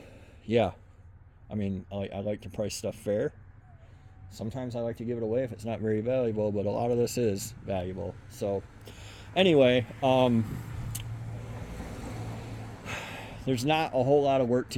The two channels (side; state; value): both; identical; correlation 1.00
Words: I mean, I like to price stuff fair. Sometimes I like to give it away if it's not very valuable, but a lot of this is valuable. So, anyway, there's not a whole lot of work